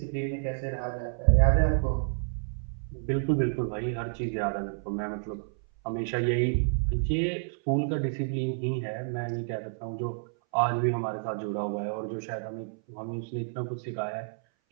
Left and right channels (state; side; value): silent; left; 58 dB below the other